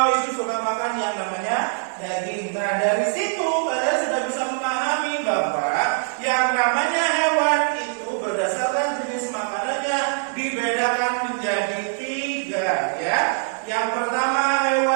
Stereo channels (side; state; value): left; silent; 63 dB below the other